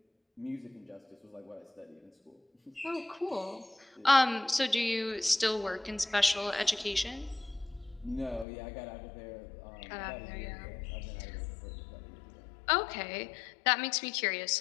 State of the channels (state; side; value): drops out; right; at 8.5 s